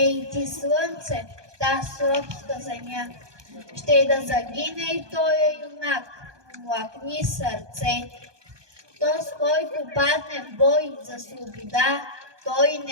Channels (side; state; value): left; late; 1.2 ms